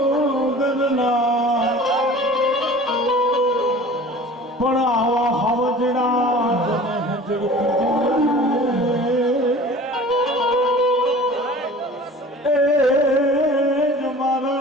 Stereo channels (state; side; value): normal; both; correlation 0.43